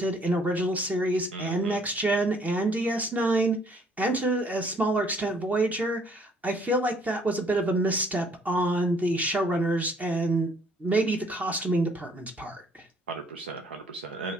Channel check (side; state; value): both; normal; correlation 0.62